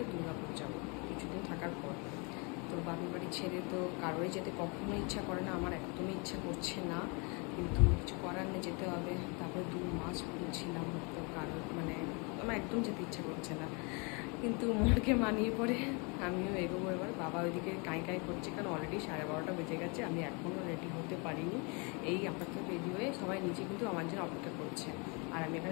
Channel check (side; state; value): right; quieter; 31.8 dB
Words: দুর্গাপুর যাবো কিছুদিন থাকার পর। তো বাপের বাড়ি ছেড়ে তো কারোরই যেতে কখনো ইচ্ছা করে না, আমার একদমই ইচ্ছা করছে না, কিন্তু কিছু করার নেই, যেতে হবে। তারপরে 2 মাস ছিলাম, তো আমার একদম যেতে ইচ্ছা করছে না, কিন্তু মনকে মানিয়ে পড়ে আমিও এগোবো এবার। বাবা ওইদিকে কাঁই করছে, কারণ অলরেডি 12:30 বেজে গেছে, আমি এখনও রেডি হতে পারিনি। এই আপাতত রেডি হয়ে সবাই নিচে কিন্তু আমার জন্য অপেক্ষা করছে, আর আমি